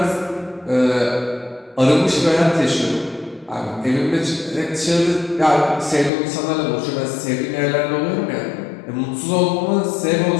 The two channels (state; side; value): drops out; right; at 6.1 s